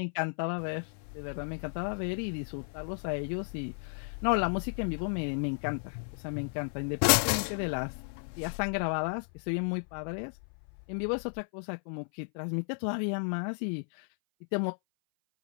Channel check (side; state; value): right; silent; 56 dB below the other